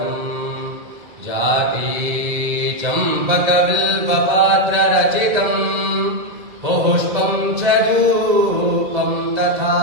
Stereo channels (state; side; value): late; left; 2.0 ms